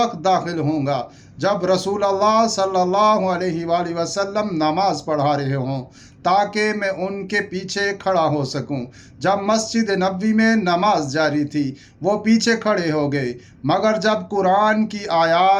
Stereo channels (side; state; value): both; identical; correlation 1.00